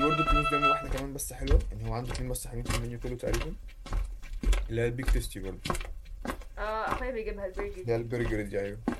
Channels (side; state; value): both; identical; correlation 1.00